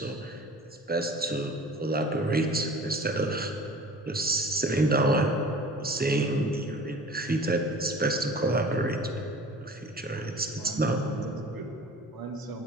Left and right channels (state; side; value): normal; both; correlation 0.43